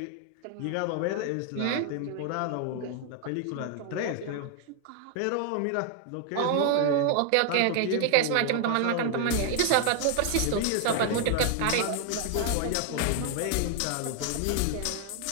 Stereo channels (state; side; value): different; both; correlation 0.00